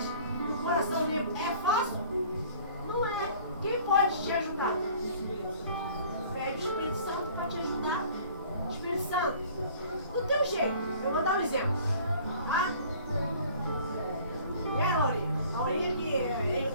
o coração limpo, é fácil? Não é. Quem pode te ajudar? Pede o Espírito Santo para te ajudar. Espírito Santo, do teu jeito. Eu vou dar um exemplo. Tá? E a Laurinha? A Laurinha que é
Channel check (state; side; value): inverted; both; correlation -0.51